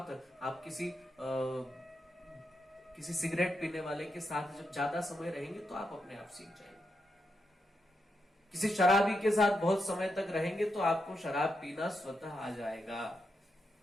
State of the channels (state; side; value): normal; both; correlation 0.84